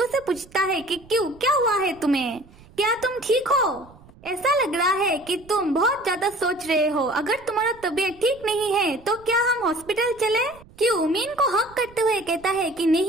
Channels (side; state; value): right; noise; rumble, 24 dB below the sound